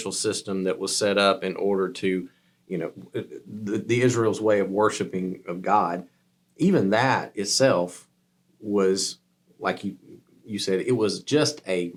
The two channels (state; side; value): identical; both; correlation 1.00